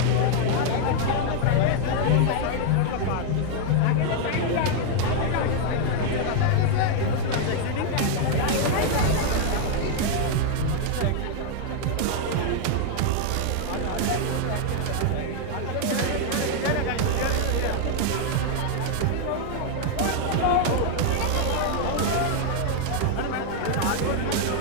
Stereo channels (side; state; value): both; different; correlation 0.00